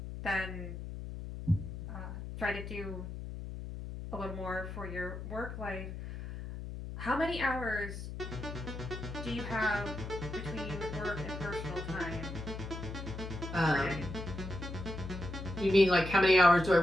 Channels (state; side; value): noise; left; hum, 8 dB below the sound